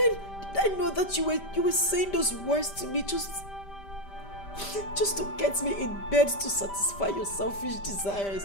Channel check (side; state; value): right; late; 5.1 ms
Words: I know that you were saying those words to me just to get me in bed to satisfy your selfish desires?